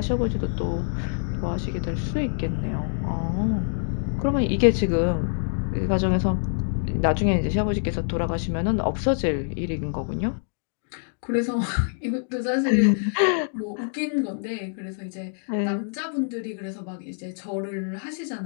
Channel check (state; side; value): silent; right; digital silence